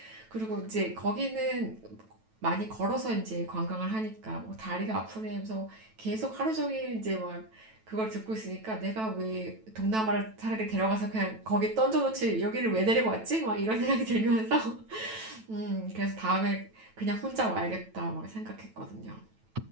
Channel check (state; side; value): late; left; 9.1 ms